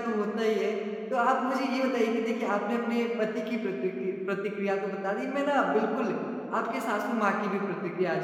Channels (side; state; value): both; identical; correlation 1.00